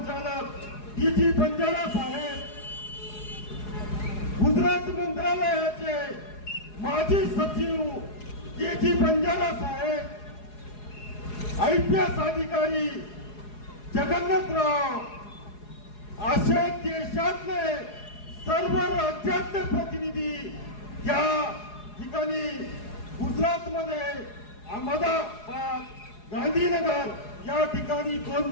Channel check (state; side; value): late; right; 4.8 ms